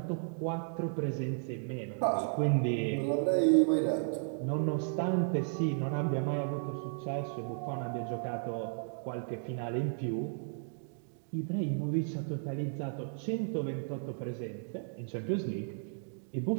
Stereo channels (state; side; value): silent; left; digital silence